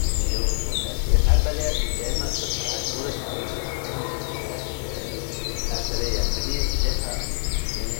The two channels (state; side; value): silent; right; digital silence